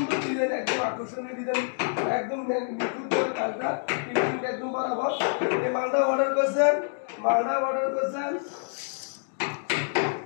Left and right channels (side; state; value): right; silent; digital silence